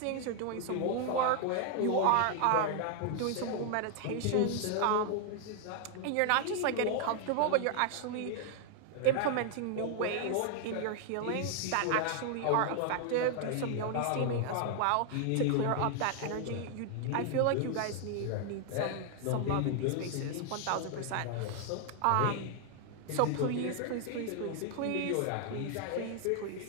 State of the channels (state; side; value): different; both; correlation 0.00